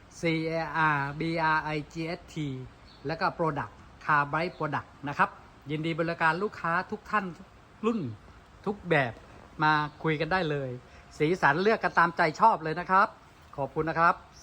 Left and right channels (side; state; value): both; identical; correlation 1.00